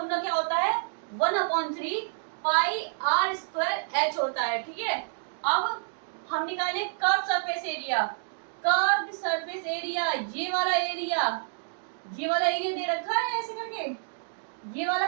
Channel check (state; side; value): silent; left; digital silence